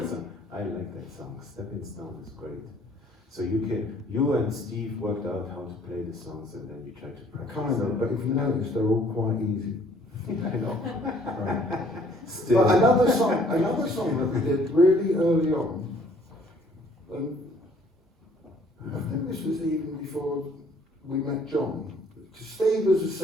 that song. I like that song. Stepping Stone is great. So you and Steve worked out how to play the songs, and then you tried to practice. Kind of, but if you notice, they're all quite easy. I know. Right. Still. But another song that we did really early on, and I think this was even before we met John, because Steve was a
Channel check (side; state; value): both; normal; correlation 0.59